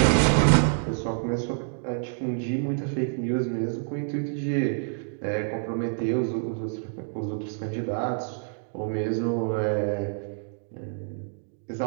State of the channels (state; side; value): silent; left; digital silence